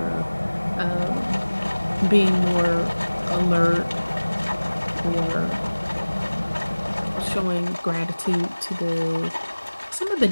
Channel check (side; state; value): both; inverted; correlation -1.00